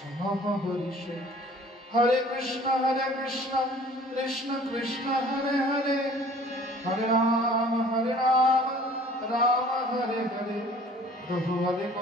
হরিষে। হরে কৃষ্ণ কৃষ্ণ কৃষ্ণ হরে হরে, হরে রাম রাম হরে হরে। প্রভু বলে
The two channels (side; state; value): both; normal; correlation 0.51